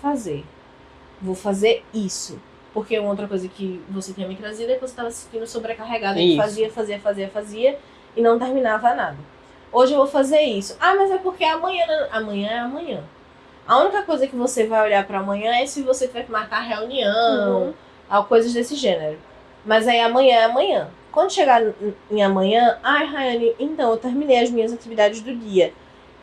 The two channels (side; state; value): both; identical; correlation 1.00